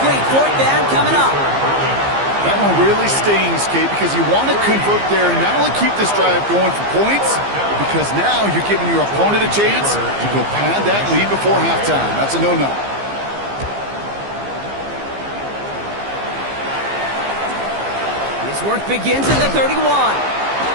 4th down coming up. That one really stings, Kate, because you want to convert there and not only keep this drive going for points, because now you're giving your opponent a chance to go pad that lead before halftime. That's a no-no. His work begins at the 31.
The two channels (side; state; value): left; late; 15 ms